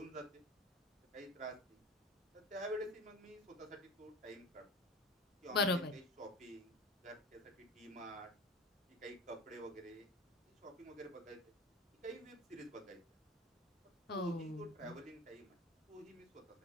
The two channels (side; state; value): both; normal; correlation 0.32